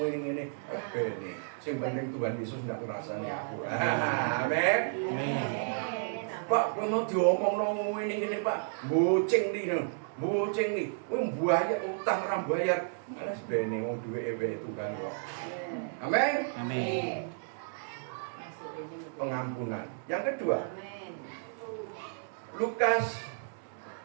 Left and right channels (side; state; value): left; silent; digital silence